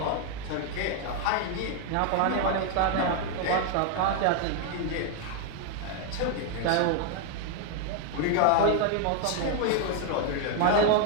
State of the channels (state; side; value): different; both; correlation 0.01